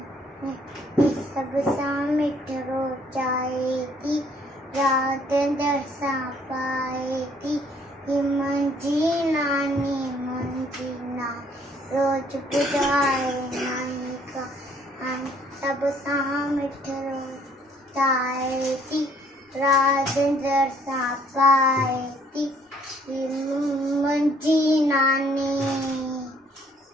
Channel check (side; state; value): both; normal; correlation 0.62